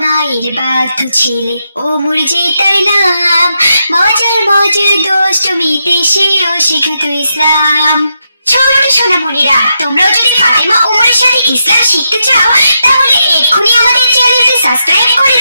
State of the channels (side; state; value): both; inverted; correlation -0.83